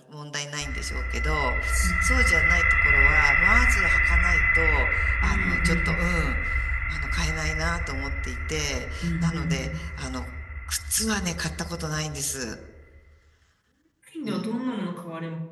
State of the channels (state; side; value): identical; both; correlation 1.00